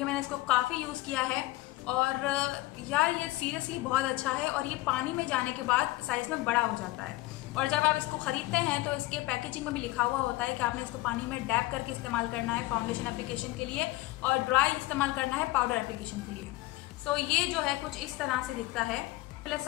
मैंने इसको काफ़ी यूज़ किया है और यार ये सीरियसली बहुत अच्छा है। और ये पानी में जाने के बाद साइज में बड़ा हो जाता है और जब आप इसको खरीदते हैं तो इसके पैकेजिंग में भी लिखा हुआ होता है कि आपने इसको पानी में डैप करके इस्तेमाल करना है फाउंडेशन एप्लीकेशन के लिए और ड्राई इस्तेमाल करना है पाउडर एप्लीकेशन के लिए। सो ये जो है कुछ इस तरह से दिखता है। पहले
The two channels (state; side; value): quieter; right; 18.8 dB